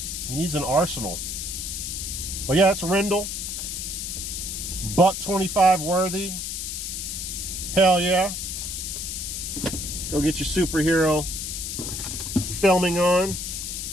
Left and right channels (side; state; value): left; noise; hiss, 4 dB below the sound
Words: needs an arsenal. But yeah, it's Rendell. $1.25 worthy. Hell yeah. Go get your superhero filming on.